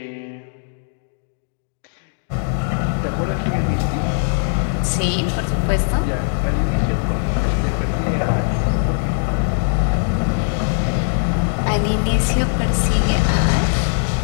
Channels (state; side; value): silent; right; digital silence